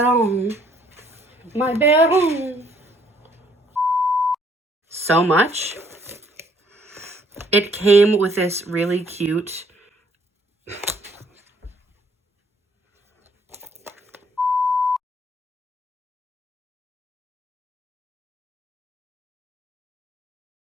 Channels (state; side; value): normal; both; correlation 0.64